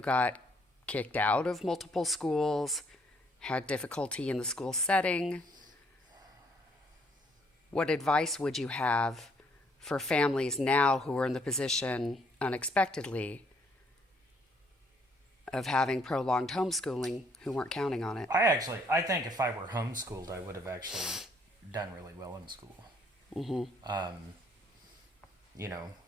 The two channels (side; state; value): both; normal; correlation 0.67